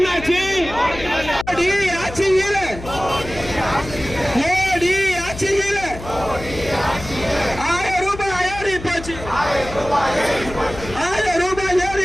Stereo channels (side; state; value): left; noise; hum, 12 dB below the sound